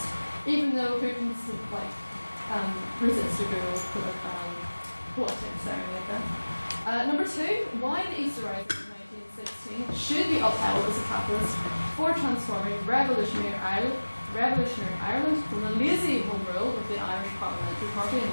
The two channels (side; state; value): both; inverted; correlation -1.00